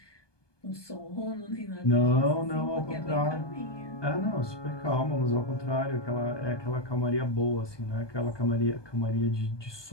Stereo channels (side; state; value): right; late; 1.2 ms